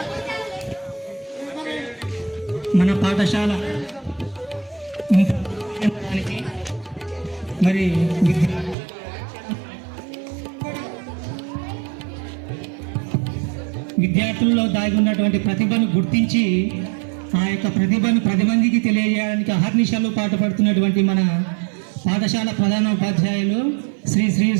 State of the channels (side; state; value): left; drops out; at 8.8 s